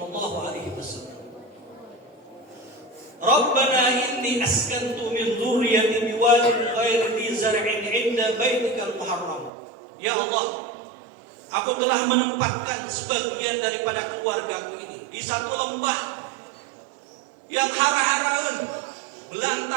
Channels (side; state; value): left; drops out; at 9.5 s